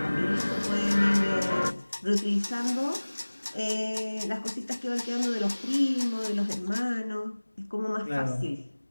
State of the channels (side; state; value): both; inverted; correlation -1.00